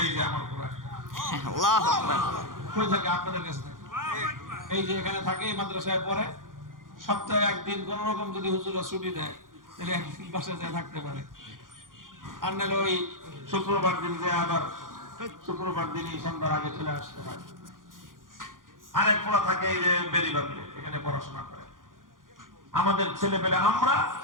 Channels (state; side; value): late; left; 0.90 ms